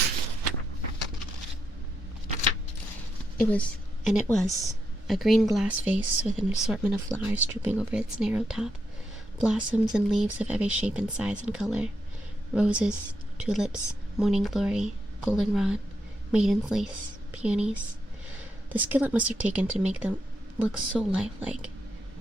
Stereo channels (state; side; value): normal; both; correlation 0.82